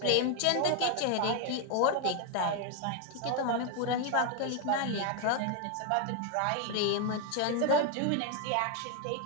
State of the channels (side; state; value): both; different; correlation 0.01